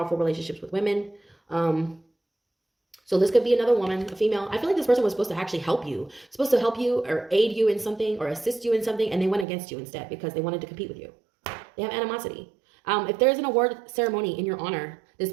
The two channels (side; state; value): left; drops out; at 9.5 s